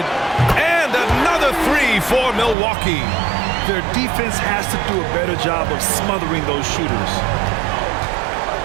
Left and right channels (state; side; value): drops out; left; at 2.6 s